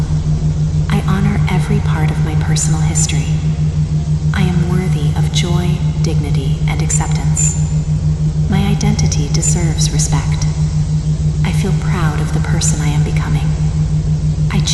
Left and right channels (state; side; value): identical; both; correlation 1.00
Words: I honor every part of my personal history. I am worthy of joy, dignity, and acceptance. My identity deserves respect. I feel proud of the person I am becoming. I